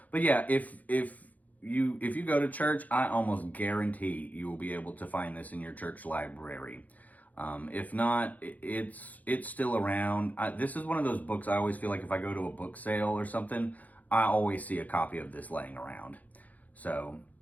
but yeah, if you go to church, I almost guarantee you will be able to find this in your church library. If not, it's still around. This is one of those books I always feel like if I go to a book sale or something, I always see a copy of this laying around. So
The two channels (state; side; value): late; right; 0.078 ms